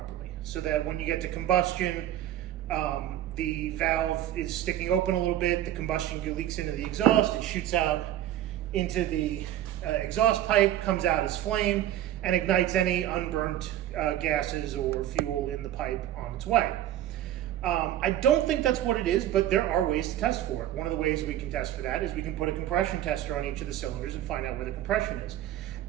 so that when you get to combustion, the valve is sticking open a little bit, the combustion leaks into the exhaust, it shoots out into the exhaust pipe, comes out as flame, and ignites any unburnt gases or fuel in the pipe on its way. I don't think that's what it is, but there are ways to test for it. One of the ways we can test for that is we can put a compression tester on each of the cylinders and find out where the compression is.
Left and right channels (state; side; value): quieter; left; 12.5 dB